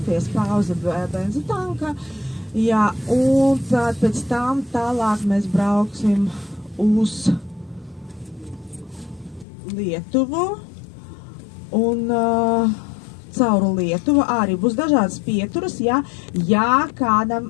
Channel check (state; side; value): drops out; right; at 9.5 s